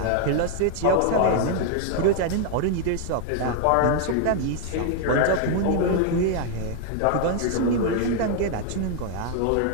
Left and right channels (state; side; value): different; both; correlation 0.00